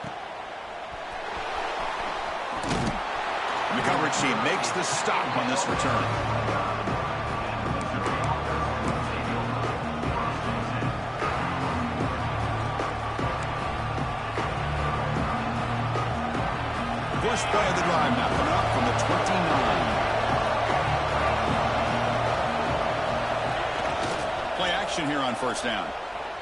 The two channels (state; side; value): identical; both; correlation 1.00